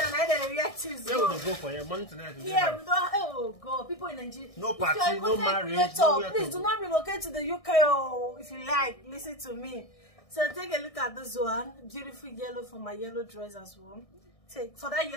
I don't react to. Where would they go for your money tonight? Yeah, we don't. Oh God, people in Nigeria. No party, no marriage. Please do not relocate to the UK. Oh, if you like, listen to me. So take a look at this one. Beautiful yellow for my yellow dress as well. Take for that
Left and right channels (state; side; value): late; right; 1.6 ms